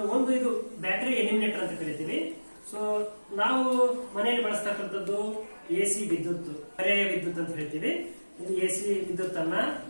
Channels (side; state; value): both; inverted; correlation -1.00